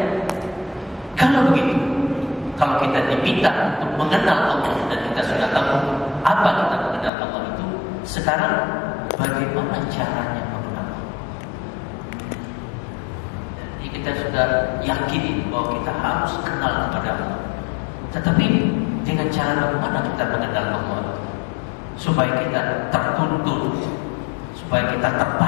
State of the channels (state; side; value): drops out; right; at 7.1 s